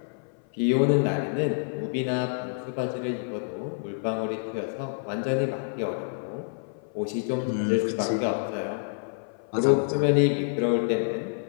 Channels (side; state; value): right; silent; 57 dB below the other